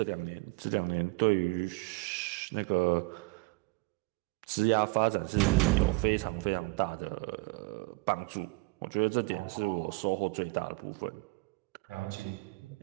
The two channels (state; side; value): quieter; left; 26.9 dB